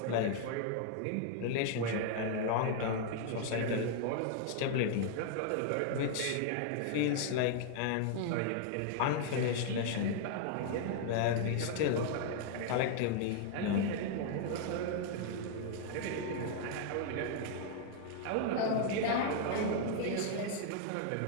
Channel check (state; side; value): different; both; correlation 0.00